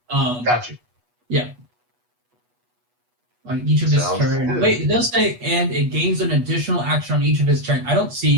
Got you. Yeah. On each of his Sounds turns. good. Wait, it does say, and it gains an additional action on each of his turns. I don't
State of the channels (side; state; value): left; late; 8.2 ms